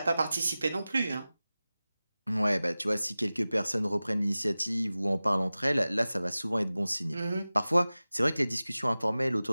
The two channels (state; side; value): inverted; both; correlation -0.97